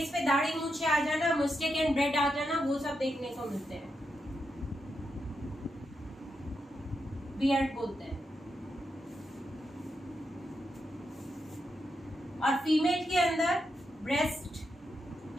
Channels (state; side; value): normal; both; correlation 0.85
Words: पे दाढ़ी मूछे आ जाना, मुस्टेक एंड ब्रेड आ जाना, वो सब देखने को मिलते हैं. बियर्ड बोलते हैं. और फीमेल के अंदर